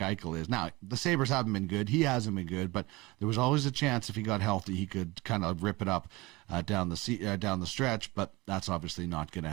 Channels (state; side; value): quieter; left; 21.9 dB